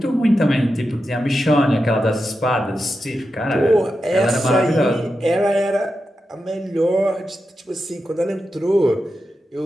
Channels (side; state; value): both; normal; correlation 0.89